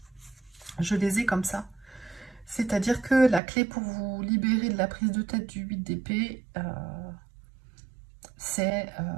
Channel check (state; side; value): drops out; left; at 3.4 s